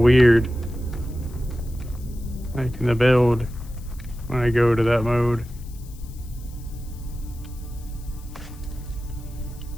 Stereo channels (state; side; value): noise; left; hiss, 23 dB below the sound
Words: weird. Like in the build when I go to that mode.